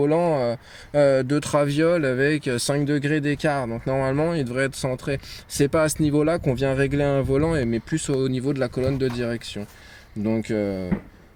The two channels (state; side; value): identical; both; correlation 1.00